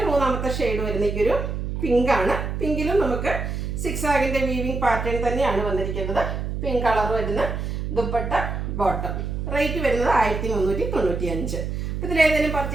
മൂന്നാമത്തെ ഷെയ്ഡ് വരുന്ന ഈ ഒരു പിങ്ക് ആണ്. പിങ്കിലും നമുക്ക് സിക്സാഗിൻ്റെ വീവിംഗ് പാറ്റേൺ തന്നെയാണ് വന്നിരിക്കുന്നത്. പിങ്ക് കളർ വരുന്ന ദുപ്പട്ട ബോട്ടം. റേറ്റ് വരുന്നത് 1395. അപ്പോൾ ഇതിലേതെങ്കിലും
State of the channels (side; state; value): right; noise; hum, 3 dB below the sound